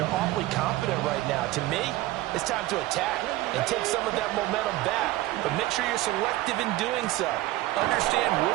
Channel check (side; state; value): left; quieter; 17.4 dB